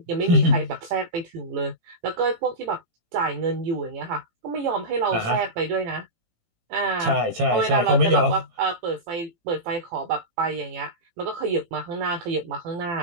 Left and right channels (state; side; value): late; left; 18 ms